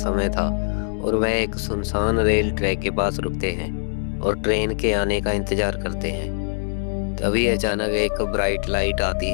था और वह एक सुनसान रेल ट्रैक के पास रुकते हैं और ट्रेन के आने का इंतजार करते हैं। तभी अचानक एक ब्राइट लाइट आती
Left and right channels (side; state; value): right; silent; digital silence